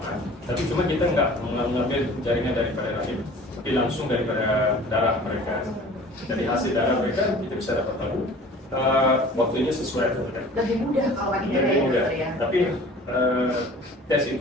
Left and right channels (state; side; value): normal; both; correlation 0.46